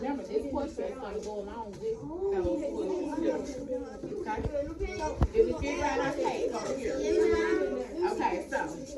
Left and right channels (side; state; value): both; identical; correlation 1.00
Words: this question is going to go along with those questions. Okay? Did we figure out our case over here? Okay, so.